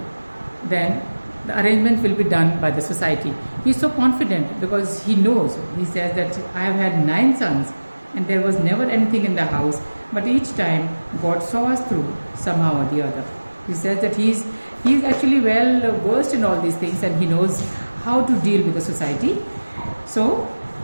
then the arrangement will be done by the society. He is so confident because he knows. He says that I have had 9 sons and there was never anything in the house, but each time God saw us through somehow or the other. He says that he is actually well versed in all these things and he knows how to deal with the society. So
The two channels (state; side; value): inverted; both; correlation -1.00